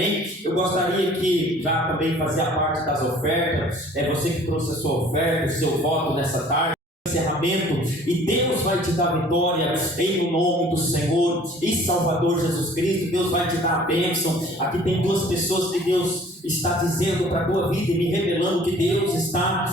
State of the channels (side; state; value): both; normal; correlation 0.52